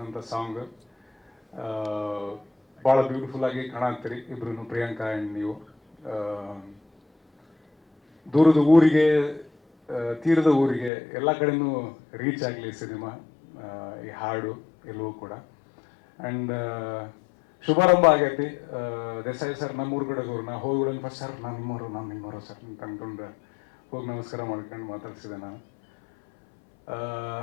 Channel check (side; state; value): right; drops out; at 10.9 s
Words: ಸಾಂಗ್. ಭಾಳ ಬ್ಯೂಟಿಫುಲ್ಲಾಗಿ ಕಾಣತ್ತೀರಿ ಇಬ್ರು, ಪ್ರಿಯಾಂಕಾ ಆ್ಯಂಡ್ ನೀವು. ದೂರದ ಊರಿಗೆ ತೀರದ ಊರಿಗೆ ಎಲ್ಲ ಕಡೆನೂ ರೀಚ್ ಆಗಲಿ ಸಿನಿಮಾ, ಈ ಹಾಡು ಎಲ್ಲವೂ ಕೂಡ. ಆ್ಯಂಡ್ ಶುಭಾರಂಭ ಆಗೈತಿ. ದೇಸಾಯಿ ಸರ್ ನಮ್ಮೂರು ಕಡೆದವ್ರು, ನಾ ಹೋಗಿ ಫಸ್ಟ್ ಸರ್ ನಾನು ನಿಮ್ಮವರು ಸರ್ ಅಂತ ಅಂದ್ಕೊಂಡು ಹೋಗಿ ನಮಸ್ಕಾರ ಮಾಡ್ಕೊಂಡು ಮಾತಾಡ್ಸಿದೆ ನಾನು.